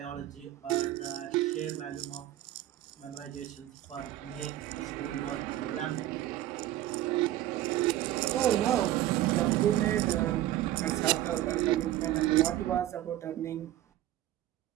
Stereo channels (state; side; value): quieter; left; 14.0 dB